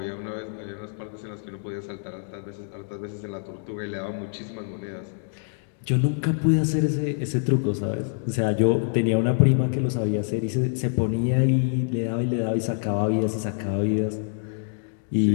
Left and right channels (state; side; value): silent; right; digital silence